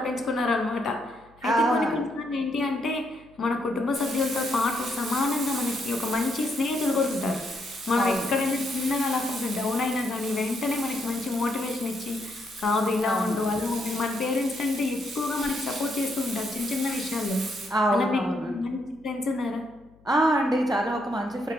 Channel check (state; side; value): noise; left; hum, 29 dB below the sound